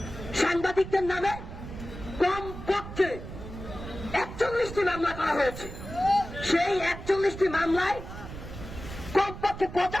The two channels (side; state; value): right; noise; rumble, 11 dB below the sound